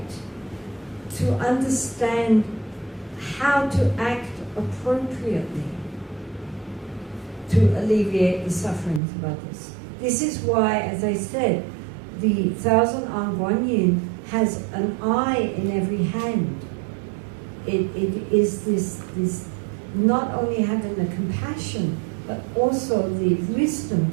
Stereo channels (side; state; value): left; drops out; at 9.0 s